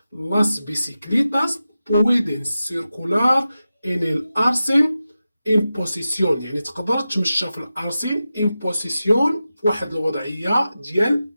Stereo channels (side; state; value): both; inverted; correlation -0.93